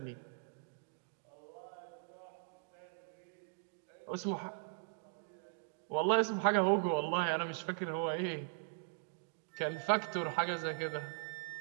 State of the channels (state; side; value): silent; left; digital silence